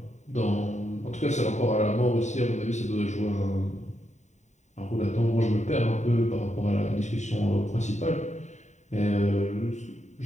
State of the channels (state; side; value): late; right; 0.34 ms